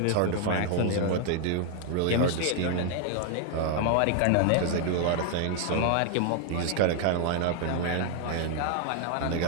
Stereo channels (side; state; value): both; different; correlation 0.00